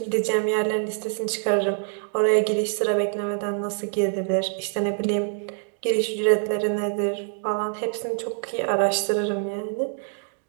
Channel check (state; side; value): silent; left; 62 dB below the other